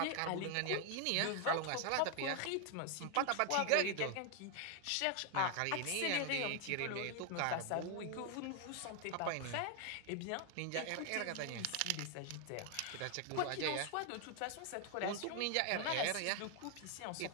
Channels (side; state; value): both; different; correlation 0.00